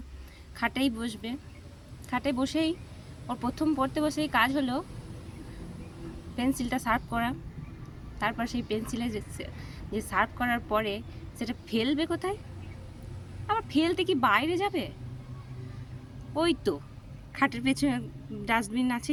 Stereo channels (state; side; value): identical; both; correlation 1.00